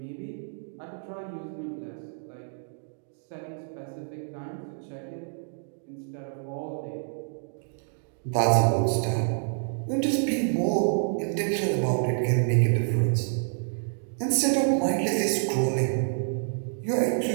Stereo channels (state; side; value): silent; left; digital silence